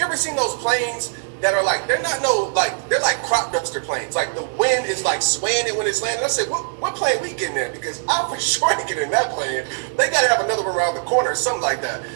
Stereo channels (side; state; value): left; silent; digital silence